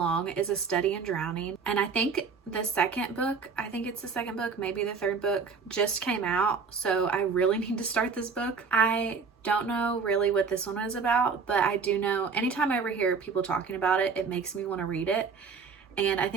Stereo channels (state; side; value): quieter; left; 5.2 dB